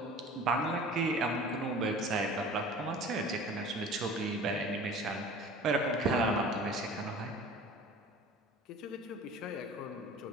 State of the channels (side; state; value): both; normal; correlation 0.42